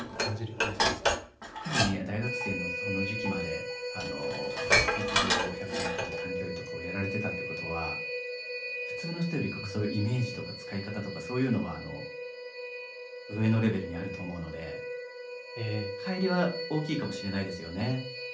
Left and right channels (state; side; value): identical; both; correlation 1.00